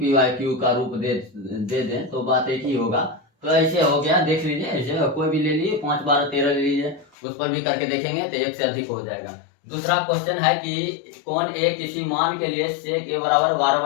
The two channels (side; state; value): right; drops out; at 7.1 s